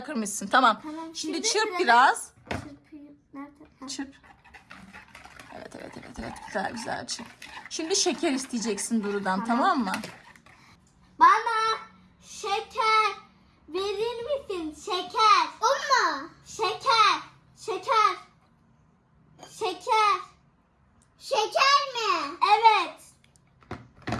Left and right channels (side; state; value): both; identical; correlation 1.00